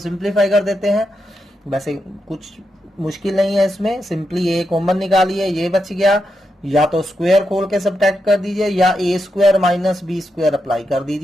कर देते हैं. वैसे कुछ मुश्किल नहीं है इसमें, सिंपली a कॉमन निकालिए, ये बच गया. या तो स्क्वायर खोल के सब्ट्रैक्ट कर दीजिए, या a square minus B square apply कर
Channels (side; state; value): both; normal; correlation 0.85